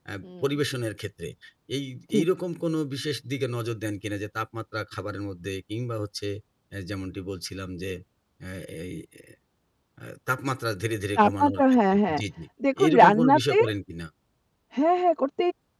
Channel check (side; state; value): both; identical; correlation 1.00